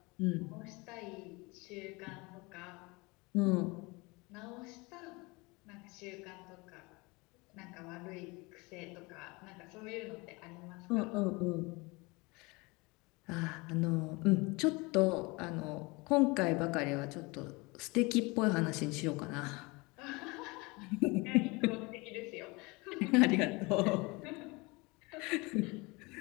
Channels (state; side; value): quieter; right; 25.6 dB